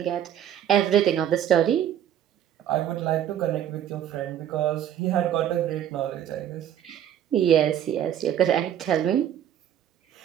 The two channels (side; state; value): left; quieter; 10.6 dB